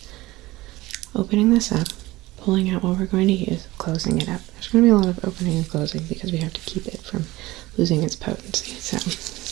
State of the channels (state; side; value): quieter; left; 19.1 dB